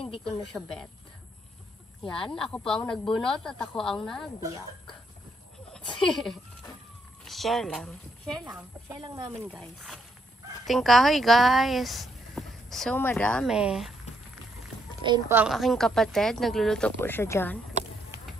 hindi ko na siya bet. Yan, ako po ang nagbunot at ako ang nagbiyak. Share lang. Share lang. Share lang namin guys. Tingkahoy guys. So madami. Ayun po ang aking kapatid. Nagluluto po siya dyan.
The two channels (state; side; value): normal; both; correlation 0.75